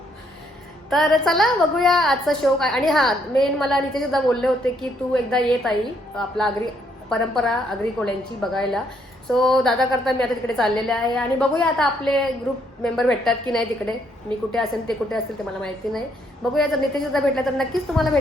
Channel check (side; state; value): both; normal; correlation 0.71